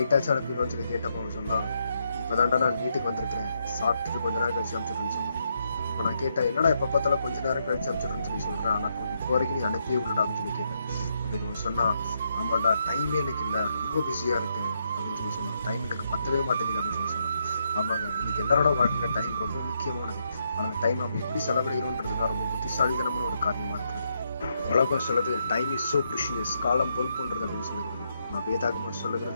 அனுப்பிடுவோம்னு சொல்லி கேட்டப்போ அவன் சொன்னான், இப்போ தான்டா நான் வீட்டுக்கு வந்திருக்கிறேன், சாப்பிட்டுட்டு கொஞ்ச நேரம் கழிச்சு அனுப்பிச்சுட்றேன்னு சொன்னான். இப்போ நான் கேட்டேன், என்னடா எப்போ பார்த்தாலும் கொஞ்ச நேரம் கழிச்சு அனுப்பிச்சுட்றேன்னு சொல்லி சொல்கிறேன், ஆனால் இப்போ வரைக்கும் நீ அனுப்பியே விடடா அப்படின்னு சொல்லி கேட்டேன். அப்படின்னு சொன்னா, ஆமாண்டா டைமே எனக்கு இல்லை, ரொம்ப பிஸியா இருக்கு அப்படின்னு சொல்லி சொன்னான். டைம் எனக்கு பத்தவே மாட்டேங்குது அப்படின்னு சொல்லி சொன்னான். ஆமாங்க, இன்னைக்கு எல்லாரோட வாழ்க்கையில டைம் ரொம்ப முக்கியமானது. ஆனால் டைம் நம்ம எப்படி செலவிடுகிறோன்றதுதான் ரொம்ப புத்திசாலித்தனமான ஒரு காரியமா இருக்குது. உலகம் சொல்லுது டைம் இஸ் சோ ப்ரிஷியஸ், காலம் பொன் போன்றது அப்படின்னு சொல்லுகிறது. நான் வேதாகமம்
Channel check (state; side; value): inverted; both; correlation -0.78